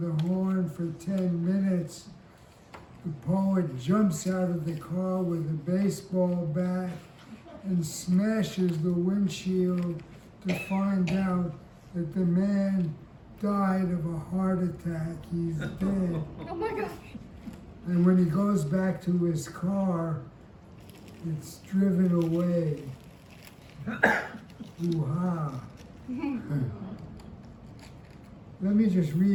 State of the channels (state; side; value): identical; both; correlation 1.00